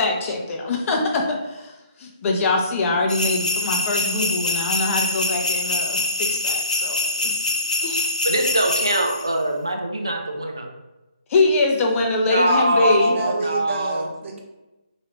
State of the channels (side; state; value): both; inverted; correlation -0.54